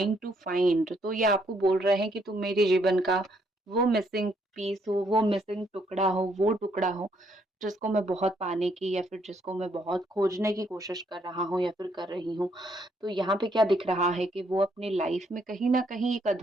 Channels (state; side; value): normal; both; correlation 0.71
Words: to find. तो ये आपको बोल रहे हैं कि तुम मेरे जीवन का वो मिसिंग पीस हो, वो मिसिंग टुकड़ा हो, वो टुकड़ा हो जिसको मैं बहुत पाने की या फिर जिसको मैं बहुत खोजने की कोशिश कर रहा हूँ या फिर कर रही हूँ। तो यहाँ पे क्या दिख रहा है कि वो अपनी लाइफ में कहीं ना कहीं एक